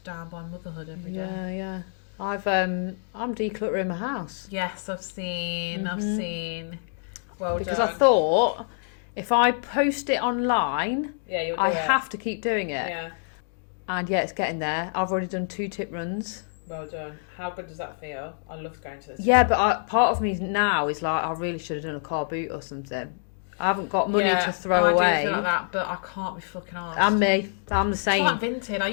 down by motherhood every day. Yeah. I'm decluttering my house. Yes, I've seen. Well because done. I thought if I post it online, you'll do I it. have to keep doing it. Yeah. And it's getting there. I've already done 2 tip runs. Well done. How good does that feel? I love going to this. Yeah, but part of me now is like, I really should have done a car boot or something. I haven't got money to throw away. I do feel like that, but I can't be fucking arsed. And me. I'm the same. It's like Vinted. I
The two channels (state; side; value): silent; right; digital silence